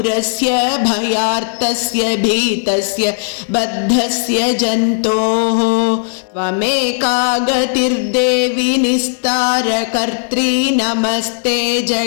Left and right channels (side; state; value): right; silent; digital silence